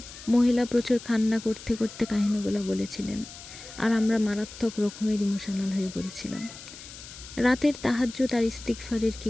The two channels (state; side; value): noise; left; hiss, 15 dB below the sound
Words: মহিলা প্রচুর কান্না করতে করতে কাহিনীগুলো বলেছিলেন, আর আমরা মারাত্মক রকমের ইমোশনাল হয়ে পড়েছিলাম। রাতের তাহাজ্জুদ আর ইস্তিগফারের কী